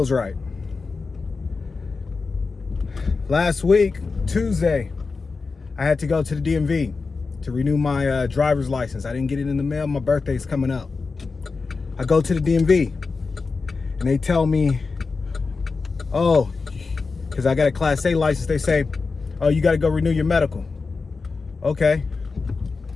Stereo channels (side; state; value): right; quieter; 4.4 dB